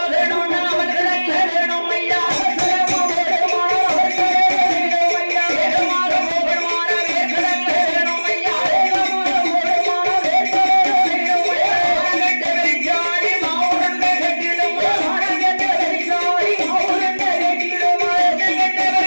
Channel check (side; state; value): both; inverted; correlation -1.00